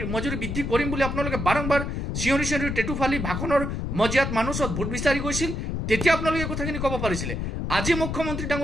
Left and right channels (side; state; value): left; noise; rumble, 3 dB below the sound